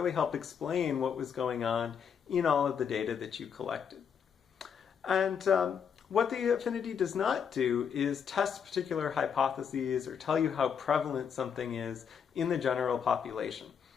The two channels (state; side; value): quieter; right; 7.3 dB